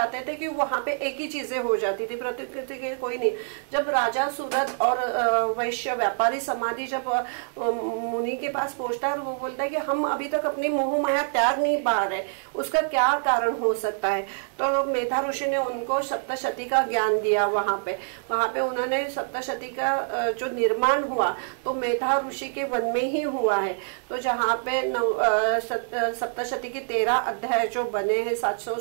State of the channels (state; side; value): silent; left; digital silence